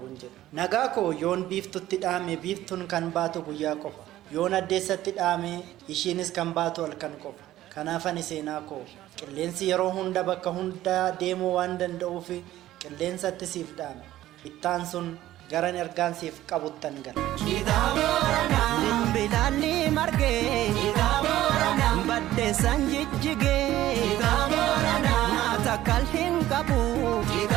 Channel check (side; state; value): left; quieter; 14.3 dB